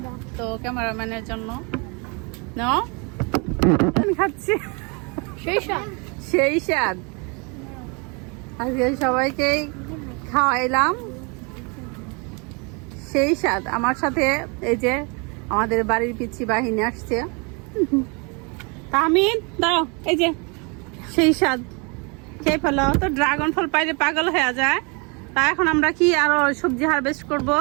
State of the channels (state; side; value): quieter; left; 31.9 dB